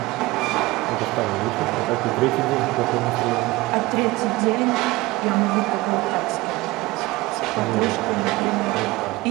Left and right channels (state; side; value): quieter; left; 20.4 dB